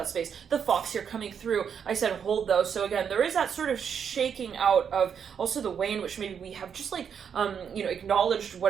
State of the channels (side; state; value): left; quieter; 7.4 dB